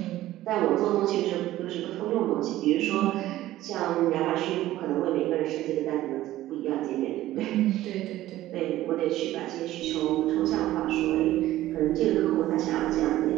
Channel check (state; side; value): quieter; left; 14.9 dB